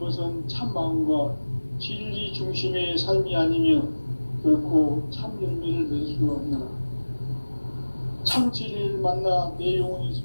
참 마음과 진리 중심의 삶이 아니면 결코 참 열매를 낼 수 없노라. 참 진리를 만나 내 영혼이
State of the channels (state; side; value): inverted; both; correlation -1.00